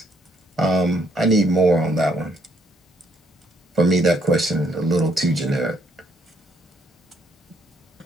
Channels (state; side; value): normal; both; correlation 0.69